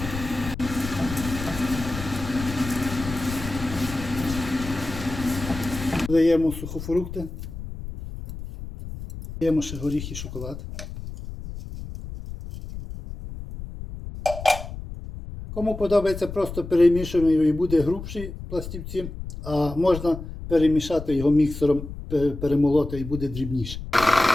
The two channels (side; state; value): left; noise; rumble, 10 dB below the sound